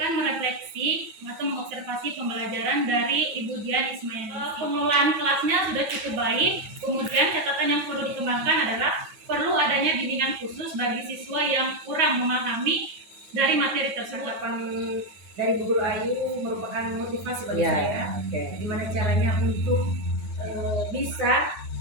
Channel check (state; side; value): late; left; 9.4 ms